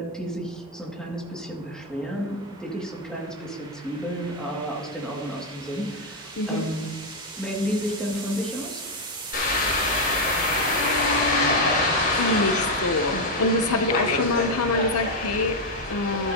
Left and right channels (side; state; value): both; normal; correlation 0.03